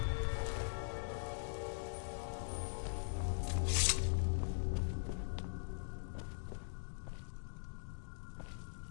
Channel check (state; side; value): silent; right; digital silence